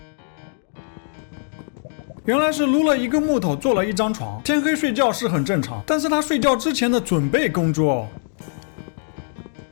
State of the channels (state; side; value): silent; right; digital silence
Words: 原来是撸了1个木头做了1张床。天黑睡觉是很正常，但是他睡觉之前的准备工作